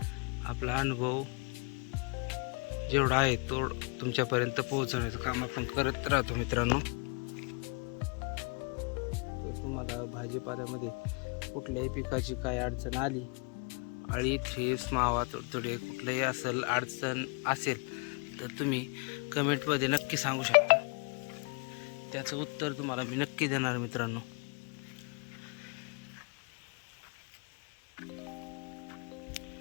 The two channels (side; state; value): right; quieter; 33.9 dB